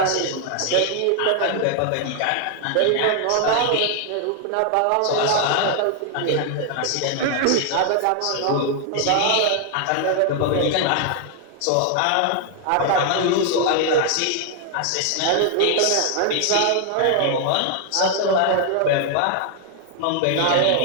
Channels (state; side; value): different; both; correlation 0.00